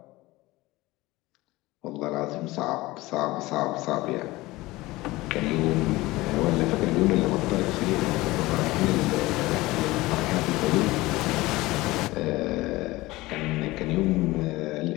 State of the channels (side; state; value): right; quieter; 19.6 dB